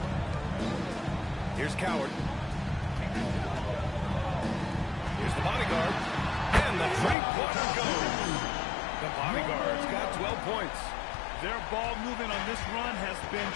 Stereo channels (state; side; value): drops out; right; at 7.2 s